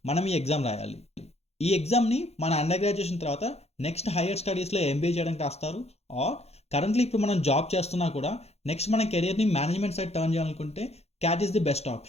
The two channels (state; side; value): late; right; 0.31 ms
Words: మనం ఈ ఎగ్జామ్ రాయాలి. ఈ ఎగ్జామ్ని మన అండర్ గ్రాడ్యుయేషన్ తర్వాత నెక్స్ట్ హైయర్ స్టడీస్లో ఎంబీఏ చేయడానికి రాస్తారు. ఆర్ కరెంట్లీ ఇప్పుడు మనం జాబ్ చేస్తున్నా కూడా నెక్స్ట్ మన కెరియర్ని మేనేజ్మెంట్ సైడ్ టర్న్ చేయాలనుకుంటే cat is the best